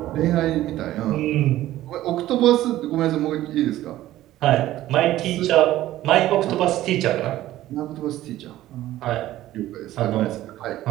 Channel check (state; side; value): quieter; left; 14.6 dB